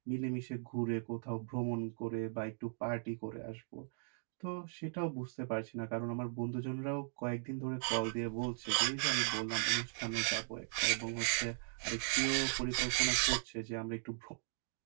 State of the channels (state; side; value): silent; left; digital silence